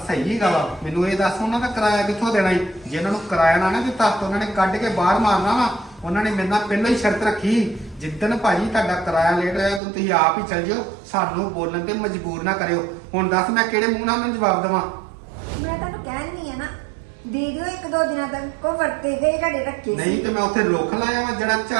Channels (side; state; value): left; drops out; at 9.8 s